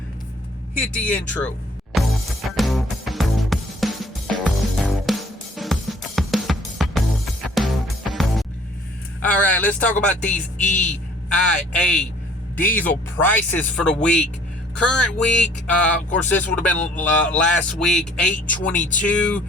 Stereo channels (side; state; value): both; normal; correlation 0.56